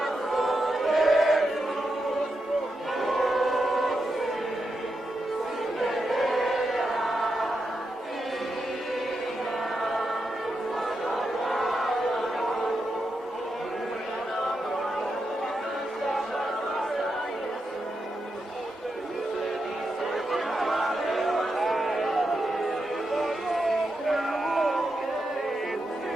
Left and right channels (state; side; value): normal; both; correlation 0.86